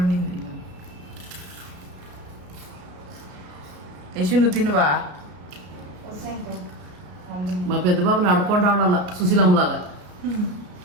ఉండింది. యశు నువ్వు తినువా? మా పెద్ద బాబుని అడుక్కొని రావడాల సుశీలమ్మలాగా.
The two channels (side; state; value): left; late; 33 ms